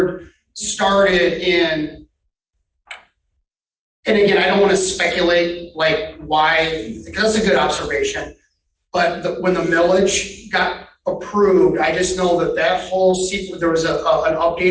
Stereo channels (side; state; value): both; identical; correlation 1.00